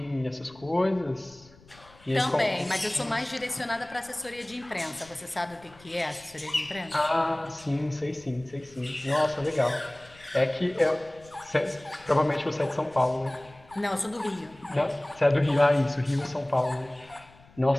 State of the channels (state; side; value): noise; left; rumble, 25 dB below the sound